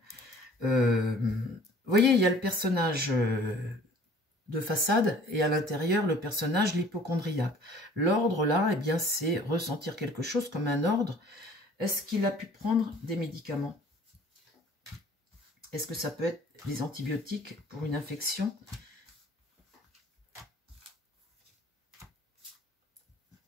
Vous voyez, il y a le personnage de façade et à l'intérieur, le personnage, l'hypocondriaque. L'ordre, là, eh bien, c'est ressentir quelque chose comme un ordre. Est-ce qu'il a pu prendre des médicaments? Est-ce que ça peut être des antibiotiques pour une infection?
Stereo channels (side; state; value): both; normal; correlation 0.51